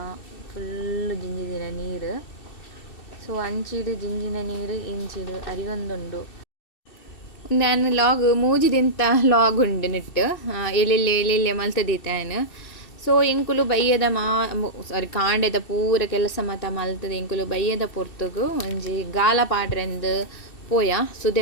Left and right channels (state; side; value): late; right; 2.7 ms